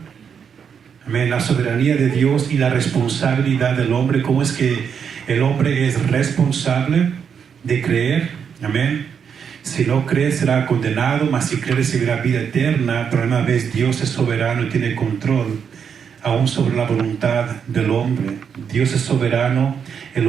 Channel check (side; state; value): left; quieter; 7.1 dB